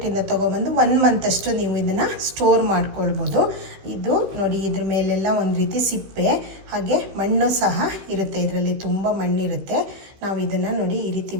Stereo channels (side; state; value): left; late; 16 ms